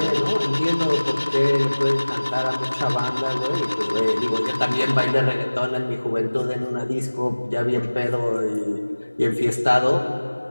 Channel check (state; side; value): inverted; both; correlation -1.00